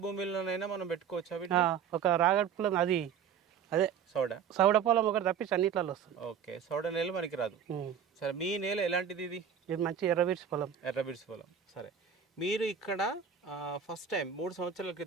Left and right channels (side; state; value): left; quieter; 7.7 dB